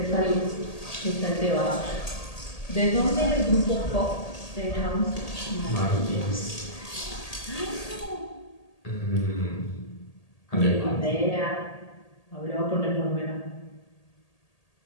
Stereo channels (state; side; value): late; right; 1.8 ms